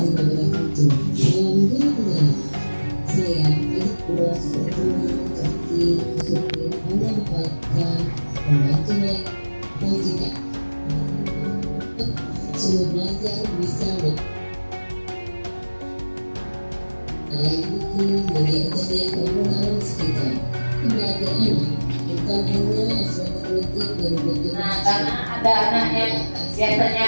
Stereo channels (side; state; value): both; inverted; correlation -1.00